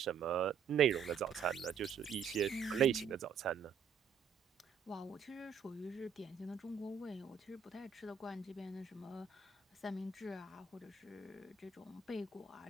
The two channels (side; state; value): left; quieter; 6.8 dB